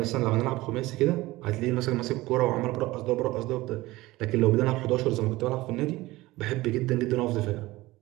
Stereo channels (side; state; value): left; quieter; 19.1 dB